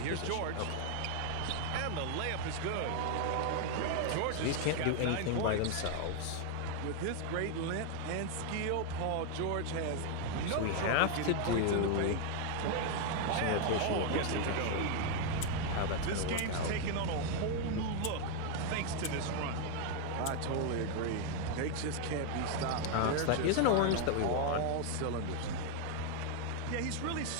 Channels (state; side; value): different; both; correlation 0.00